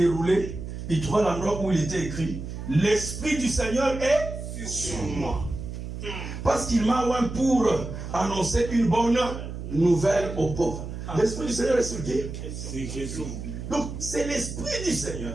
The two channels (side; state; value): right; noise; hum, 8 dB below the sound